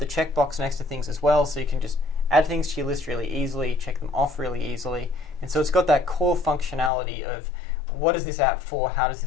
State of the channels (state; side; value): drops out; right; at 6.9 s